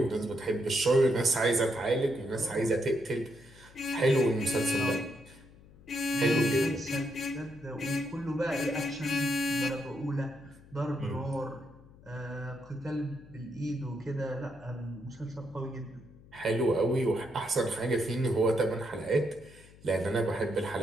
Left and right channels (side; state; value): left; noise; hum, 23 dB below the sound